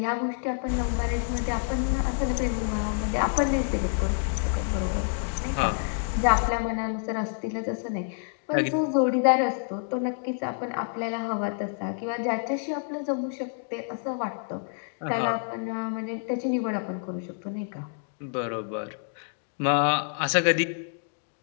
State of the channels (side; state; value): right; silent; 58 dB below the other